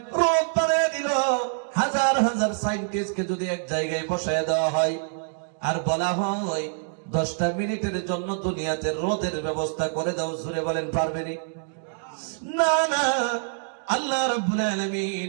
রোদ বানায় দিল। হাজার হাজার সায়েন্টিস্টকে যদি এক জায়গায় বসায় দেওয়া হয় আর বলা হয় 10টা মিনিটের জন্য দুনিয়াতে রোদের ব্যবস্থা করে দাও, জোরে বলেন পারবেনি? না না। আল্লাহ রাব্বুল আলামিন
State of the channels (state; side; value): silent; left; digital silence